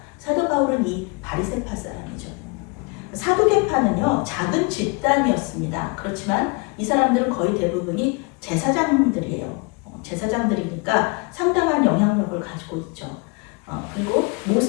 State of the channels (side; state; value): right; quieter; 29.5 dB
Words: 사도 바울은 이 바리새파 사람이죠. 사두개파는요, 작은 집단이었습니다. 그렇지만 이 사람들은 거의 대부분이 제사장들이에요. 제사장들이니까 상당한 영향력을 가지고 있죠. 그리고